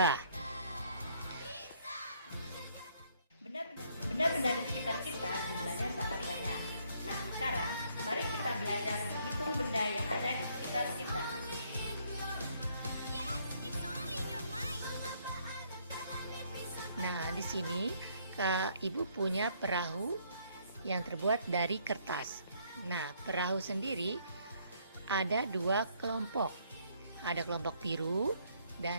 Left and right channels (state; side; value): inverted; both; correlation -0.67